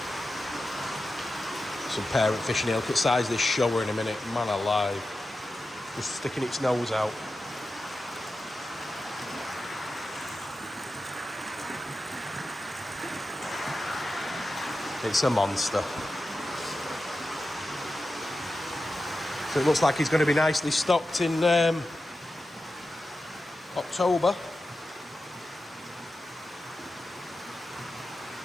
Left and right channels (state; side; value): normal; both; correlation 0.92